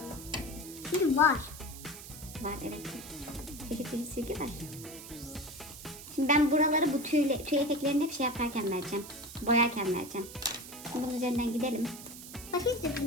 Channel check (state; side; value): noise; right; hiss, 13 dB below the sound